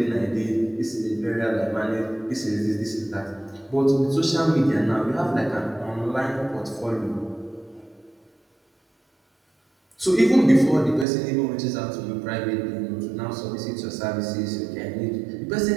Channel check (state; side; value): drops out; left; at 11.1 s